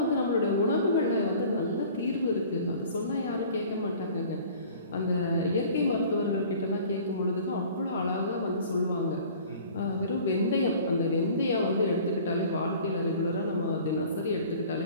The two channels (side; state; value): both; inverted; correlation -0.47